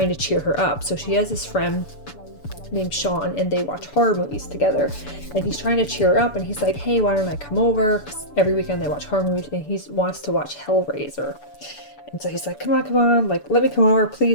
to cheer her up. So she has this friend named Sean, and they watch horror movies together, and he's trying to cheer her up, and he's like, hey, why don't I come over? 'Cause every weekend they watch horror movies, and he wants to watch Hellraiser. And so he's like, come on, like, let me come over,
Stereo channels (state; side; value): late; right; 6.9 ms